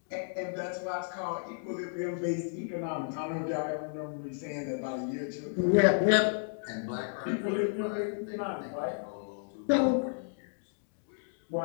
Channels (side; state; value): right; silent; digital silence